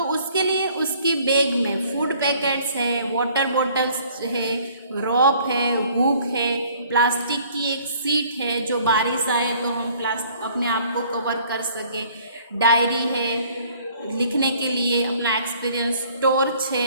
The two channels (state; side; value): inverted; both; correlation -0.56